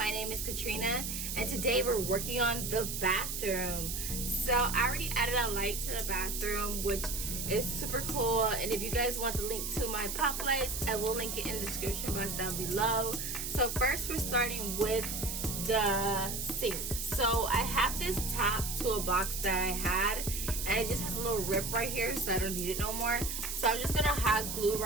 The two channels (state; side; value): noise; right; hiss, 4 dB below the sound